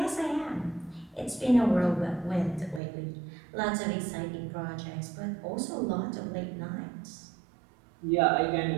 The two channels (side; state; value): left; drops out; at 2.8 s